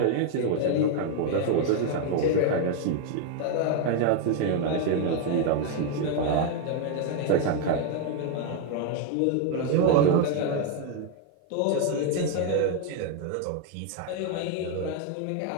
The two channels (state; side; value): different; both; correlation 0.01